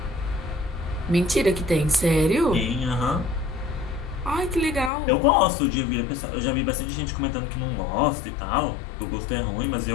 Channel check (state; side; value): drops out; right; at 4.9 s